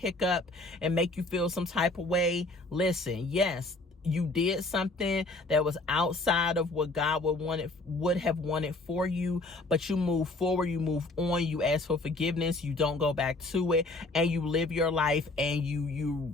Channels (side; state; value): right; quieter; 3.0 dB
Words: and make you feel some type of way, listen, yes, you did something that was outside of what God would have wanted for you, but you move forward, you move on, you ask for forgiveness, you don't go back to it, and you live your life, and